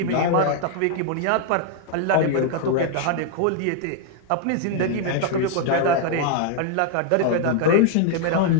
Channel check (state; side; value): different; both; correlation 0.00